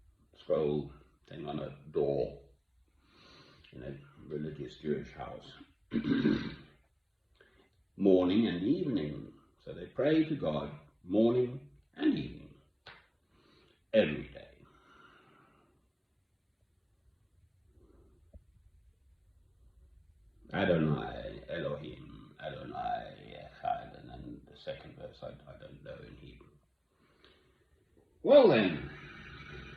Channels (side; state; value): both; identical; correlation 1.00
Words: scroll thing on a door in a religious Jewish house. Morning and evening. So they pray to God morning and evening, every day. Adonai, Elohim, Adonai, Echad, and then the second verse I don't know in Hebrew. Well then,